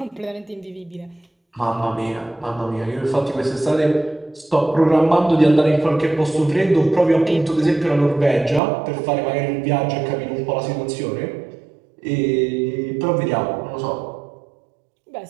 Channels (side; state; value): left; drops out; at 8.6 s